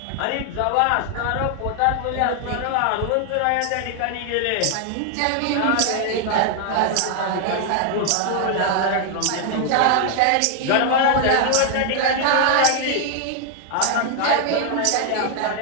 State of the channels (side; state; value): both; different; correlation 0.00